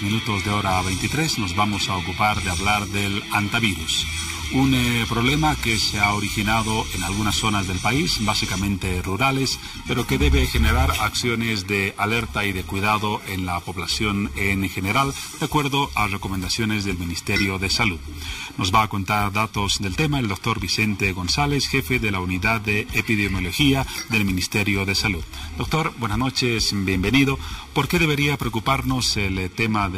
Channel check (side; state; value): both; identical; correlation 1.00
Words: minutos de hora 23 nos vamos a ocupar de hablar del hantavirus, un problema que se ha originado en algunas zonas del país, básicamente rurales, pero que debe generar acciones de alerta y de cuidado en la población en general, de acuerdo a recomendaciones del Ministerio de Salud. Nos va a contar datos del tema el doctor Vicente González, jefe de la Unidad de Epidemiología del Ministerio de Salud. Doctor, buenas noches, bienvenido. ¿Por qué debería preocuparnos el tema